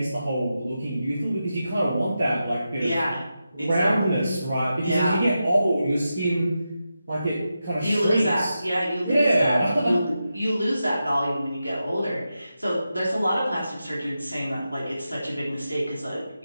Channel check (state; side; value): inverted; both; correlation -0.89